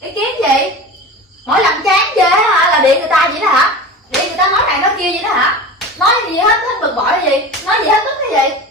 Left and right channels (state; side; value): normal; both; correlation 0.32